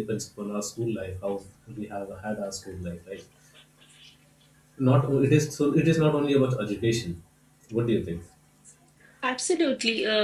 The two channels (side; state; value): both; identical; correlation 1.00